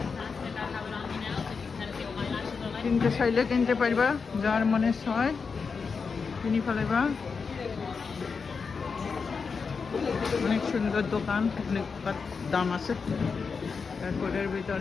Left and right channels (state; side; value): quieter; right; 5.3 dB